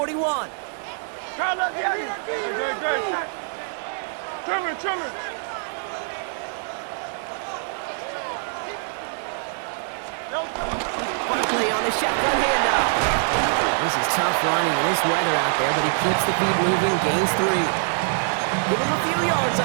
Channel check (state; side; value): silent; left; 59 dB below the other